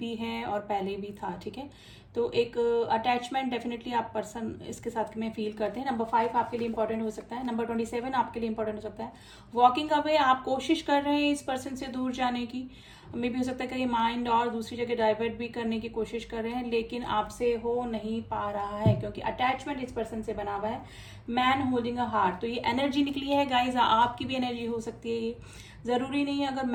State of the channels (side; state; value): both; identical; correlation 1.00